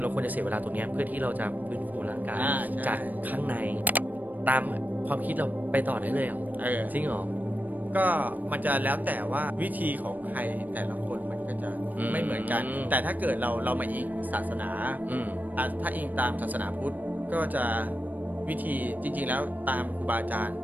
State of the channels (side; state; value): left; late; 0.085 ms